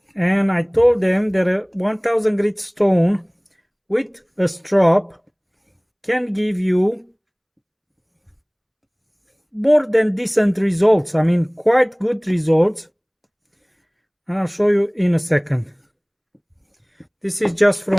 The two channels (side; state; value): both; identical; correlation 1.00